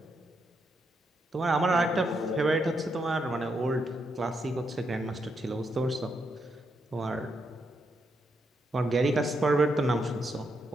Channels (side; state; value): both; normal; correlation 0.80